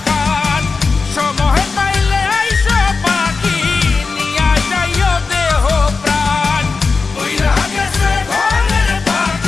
খান, সময় পাইলে আইসো পাখি, নিয়া যাইও দেহ প্রাণ। ওইরা গেছে ঘরের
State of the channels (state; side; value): quieter; right; 4.5 dB